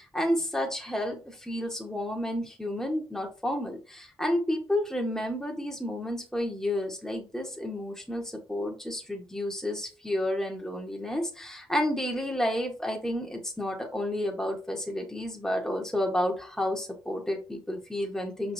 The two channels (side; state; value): both; normal; correlation 0.82